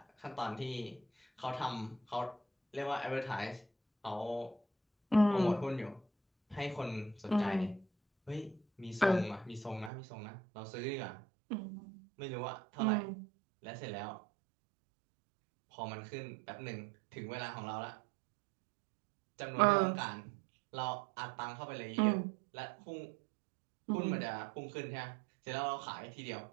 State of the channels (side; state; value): left; drops out; at 9.9 s